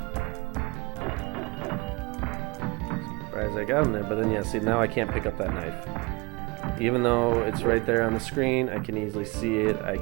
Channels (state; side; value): quieter; left; 26.3 dB